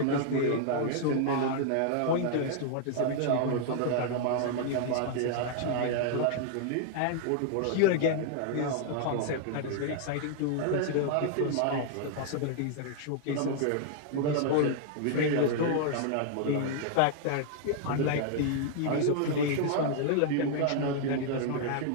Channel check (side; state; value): both; different; correlation -0.01